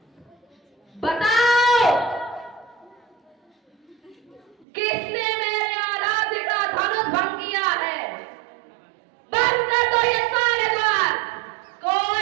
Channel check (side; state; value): left; drops out; at 4.7 s